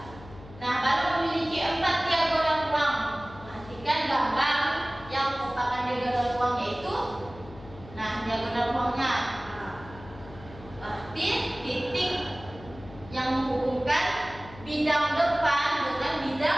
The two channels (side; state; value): left; noise; hum, 17 dB below the sound